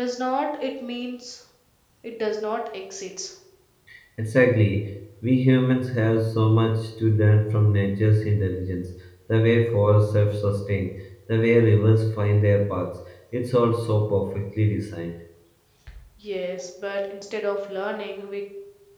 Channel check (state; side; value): identical; both; correlation 1.00